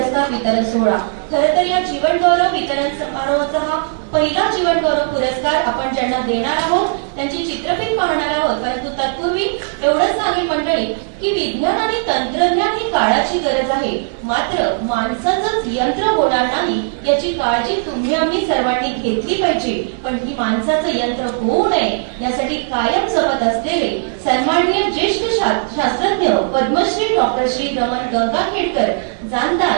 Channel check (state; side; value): silent; left; digital silence